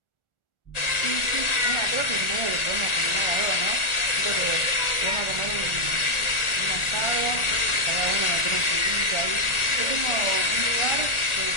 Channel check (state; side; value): late; right; 1.4 ms